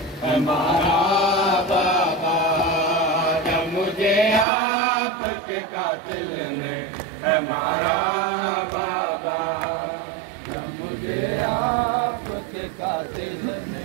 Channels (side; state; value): left; drops out; at 4.5 s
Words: मारा बाबा, जब मुझे आपके कातिल ने मारा बाबा, जब मुझे आपके कातिल ने